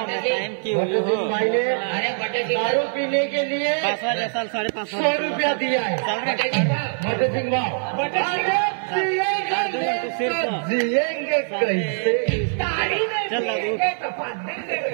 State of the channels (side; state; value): left; silent; 56 dB below the other